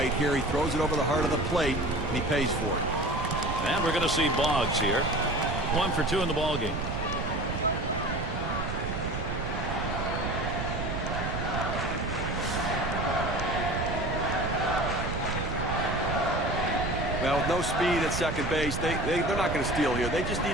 here. He throws it over the heart of the plate, and he pays for it. And we're going to see Boggs here. 1 for 2 in the ball game. Well, with no speed at second base, they're not going to steal here. They just need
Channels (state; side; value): noise; right; rumble, 4 dB below the sound